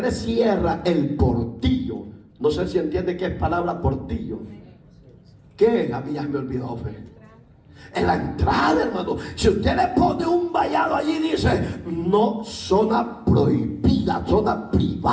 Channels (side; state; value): both; identical; correlation 1.00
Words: le cierra el portillo, no sé si entiende qué es palabra portillo. ¿Qué es? A mí ya me olvidó, Fe. En la entrada, hermano, si usted le pone un vallado allí, dice: no, zona prohibida, zona